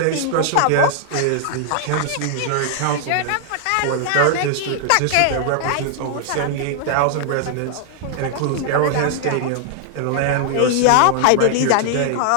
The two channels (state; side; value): different; both; correlation 0.00